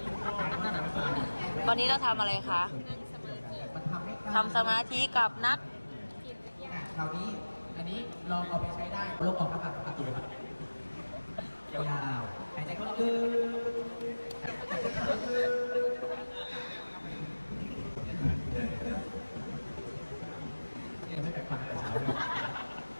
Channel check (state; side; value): inverted; both; correlation -1.00